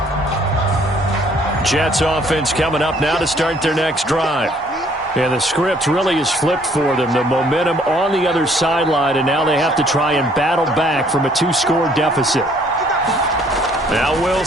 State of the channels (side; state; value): both; normal; correlation 0.62